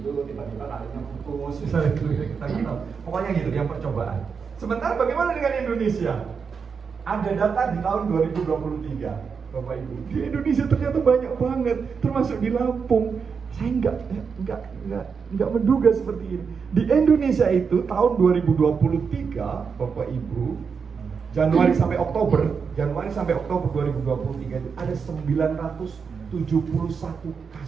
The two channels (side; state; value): left; quieter; 5.9 dB